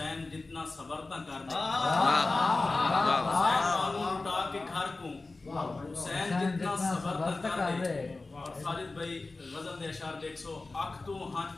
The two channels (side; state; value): right; quieter; 3.4 dB